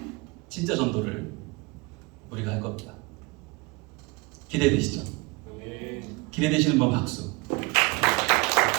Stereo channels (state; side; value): quieter; left; 25.9 dB